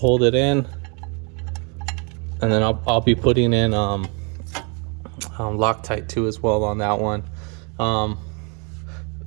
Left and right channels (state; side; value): quieter; left; 34.4 dB